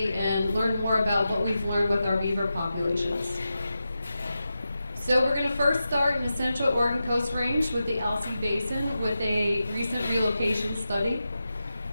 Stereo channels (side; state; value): both; inverted; correlation -0.91